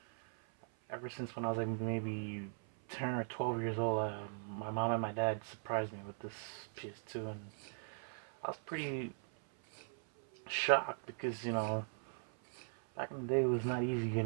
ever since when I was like maybe 10 or 12 years old, my mom and my dad surprised me with this PS2, and I was pretty shocked because, back in the day it was not easy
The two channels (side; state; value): left; silent; 51 dB below the other